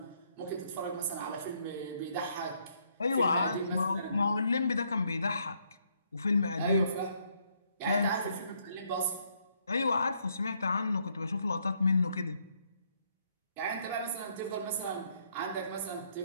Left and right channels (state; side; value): inverted; both; correlation -0.71